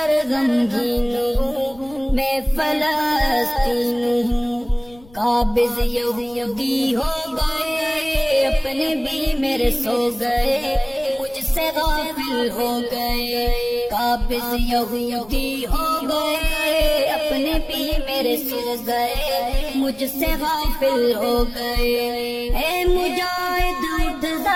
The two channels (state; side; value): noise; left; rumble, 25 dB below the sound